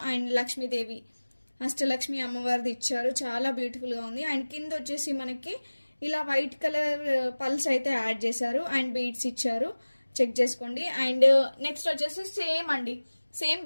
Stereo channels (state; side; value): inverted; both; correlation -1.00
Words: అండ్ లక్ష్మీదేవి అష్టలక్ష్మి అమ్మవారిది ఇచ్చారు. చాలా బ్యూటిఫుల్గా ఉంది. అండ్ కింద వచ్చేసి మనకి ఇలా వైట్ కలర్ పల్స్ అయితే యాడ్ చేశారు. అండ్ బీడ్స్ ఇచ్చారు, చెక్ చేసుకోండి. అండ్ నెక్స్ట్ వచ్చేసి సేమ్ అండి, సేమ్